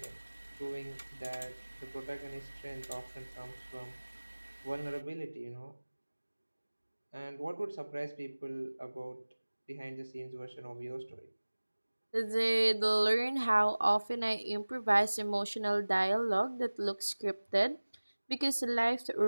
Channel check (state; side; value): inverted; both; correlation -1.00